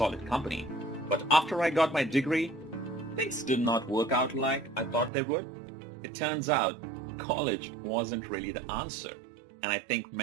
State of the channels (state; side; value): drops out; left; at 5.1 s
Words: company. But after I got my degree, things did not work out like I thought they would. It turns out college wasn't really the answer. And I think